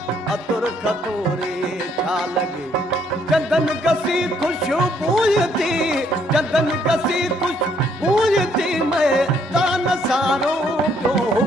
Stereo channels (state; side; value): normal; both; correlation 0.68